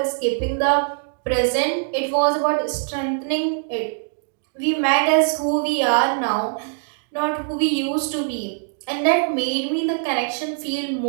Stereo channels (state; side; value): silent; left; digital silence